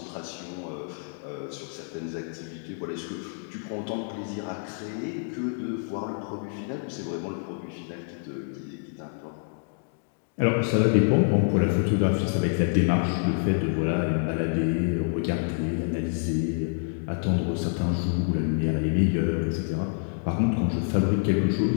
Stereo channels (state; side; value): silent; right; 60 dB below the other